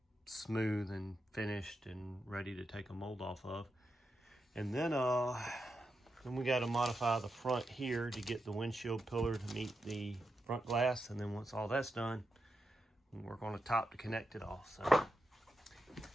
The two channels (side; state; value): both; normal; correlation 0.87